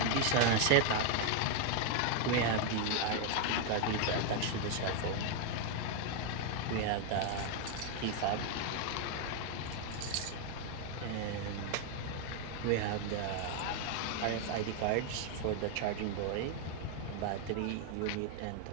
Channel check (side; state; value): both; different; correlation 0.00